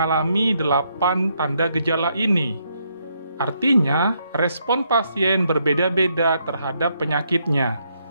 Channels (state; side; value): inverted; both; correlation -0.75